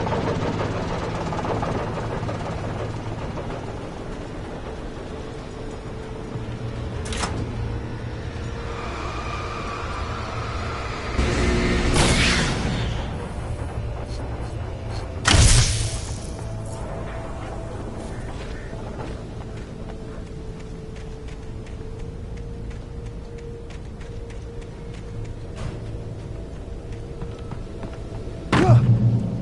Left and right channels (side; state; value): both; identical; correlation 1.00